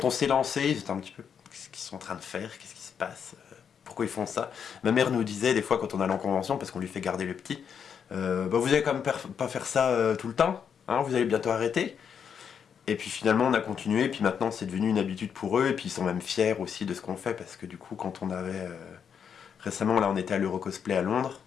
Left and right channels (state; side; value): quieter; right; 7.4 dB